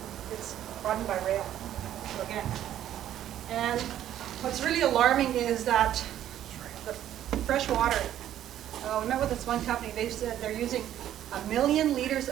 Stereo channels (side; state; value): left; quieter; 11.6 dB